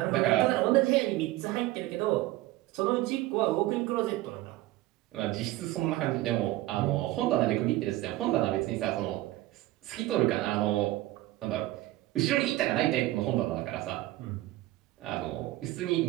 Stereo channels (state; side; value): quieter; left; 17.1 dB